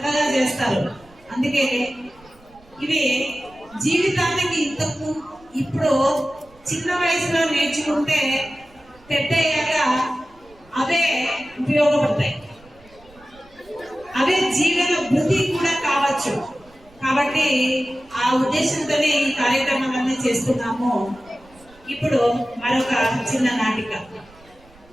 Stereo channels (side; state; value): right; noise; rumble, 27 dB below the sound